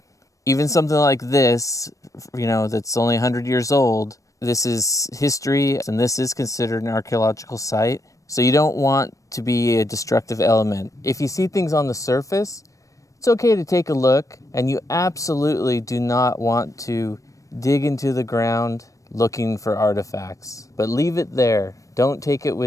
Even something like this, you know, that's only 100 years old, this is history, and this is considered an archaeological site. So you don't want to be a destructive element. If you see things on the surface, it's okay to take a look, and you absolutely do not want to dig into the ground looking for artifacts. But leave it there. Don't take it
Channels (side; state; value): right; late; 0.16 ms